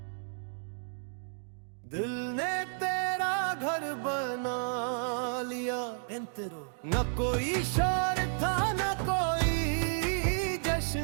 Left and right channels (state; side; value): silent; left; digital silence